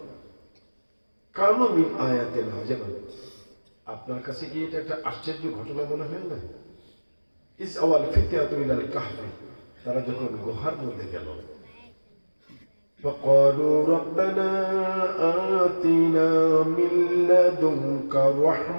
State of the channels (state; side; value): inverted; both; correlation -1.00